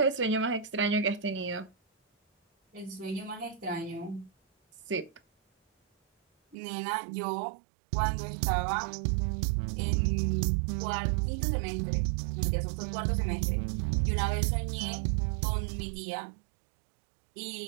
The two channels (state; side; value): drops out; left; at 6.6 s